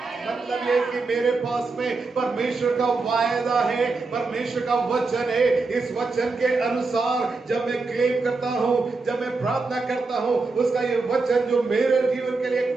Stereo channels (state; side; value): quieter; left; 3.9 dB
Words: मतलब ये कि मेरे पास में परमेश्वर का वायदा है, परमेश्वर का वचन है। इस वचन के अनुसार जब मैं क्लेम करता हूँ, जब मैं प्रार्थना करता हूँ, उसका ये वचन जो मेरे जीवन के लिए एक